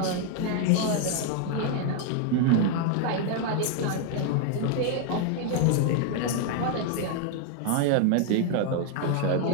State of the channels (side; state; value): both; different; correlation 0.00